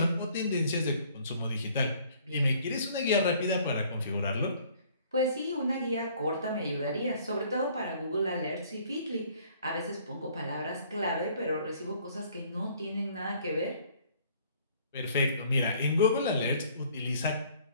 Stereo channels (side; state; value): both; inverted; correlation -0.58